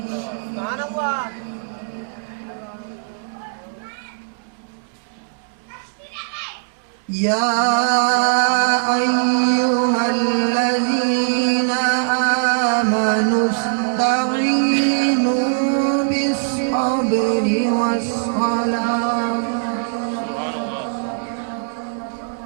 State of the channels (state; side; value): silent; left; digital silence